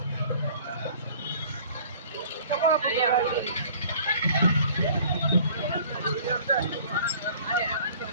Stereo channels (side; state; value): both; inverted; correlation -0.51